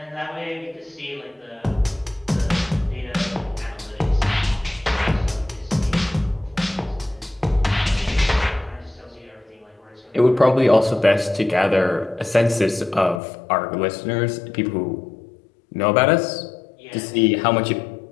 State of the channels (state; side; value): drops out; right; at 13.2 s